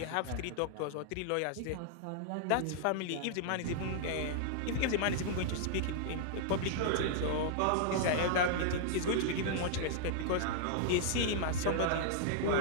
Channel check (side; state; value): both; different; correlation -0.01